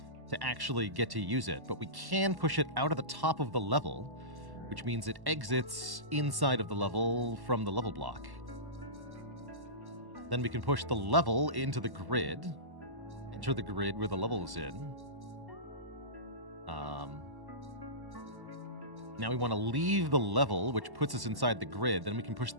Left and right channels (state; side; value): late; left; 1.1 ms